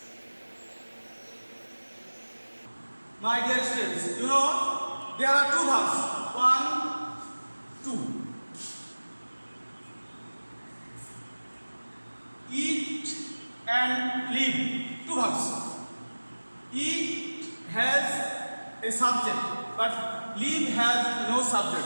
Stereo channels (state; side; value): inverted; both; correlation -1.00